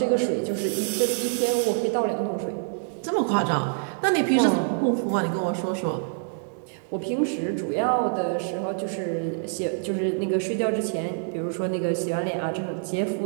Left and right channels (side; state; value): left; silent; digital silence